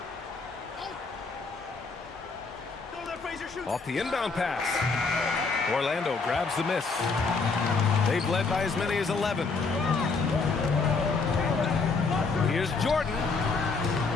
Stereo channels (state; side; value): quieter; right; 4.3 dB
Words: Off the inbound pass. Orlando grabs the miss. They've led by as many as 11. Here's Jordan.